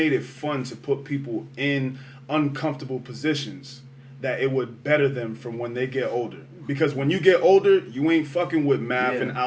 it fun to put people in uncomfortable positions, that it would better them from when they get older. Because when you get older, you ain't fucking with math and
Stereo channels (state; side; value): identical; both; correlation 1.00